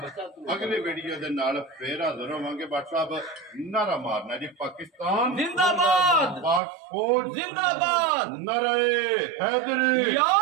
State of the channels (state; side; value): drops out; left; at 6.6 s